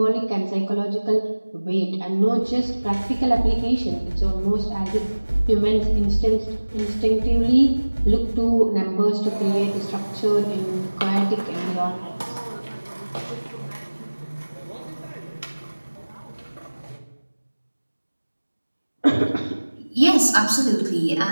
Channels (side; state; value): both; inverted; correlation -1.00